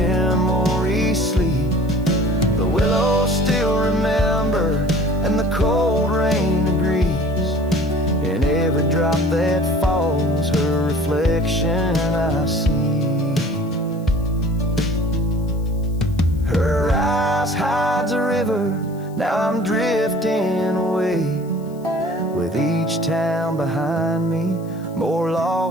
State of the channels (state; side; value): noise; left; hiss, 28 dB below the sound